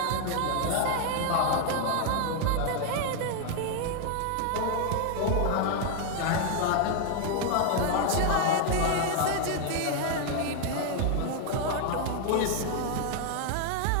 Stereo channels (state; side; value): different; both; correlation 0.00